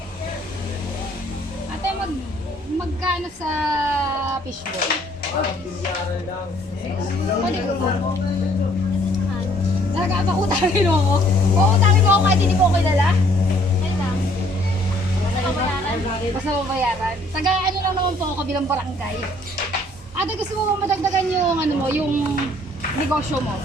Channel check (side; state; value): both; normal; correlation 0.61